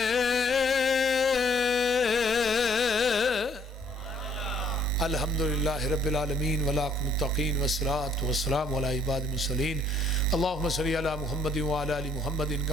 الحمدللہ رب العالمین والعاقبۃ للمتقین والصلاة والسلام علی عباد المرسلین، اللہم صلی علی محمد وعلی آل محمد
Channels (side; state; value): both; normal; correlation 0.64